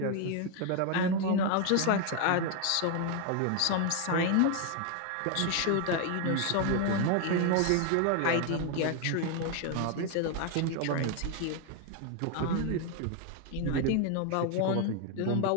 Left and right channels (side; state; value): both; different; correlation 0.01